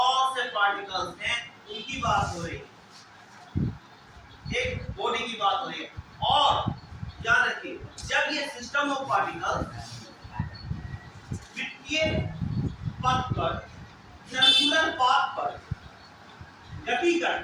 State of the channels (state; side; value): identical; both; correlation 1.00